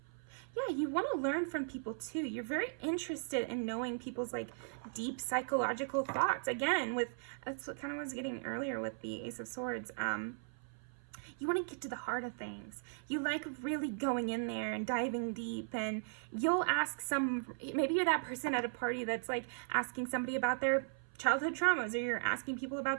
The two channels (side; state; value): left; silent; 53 dB below the other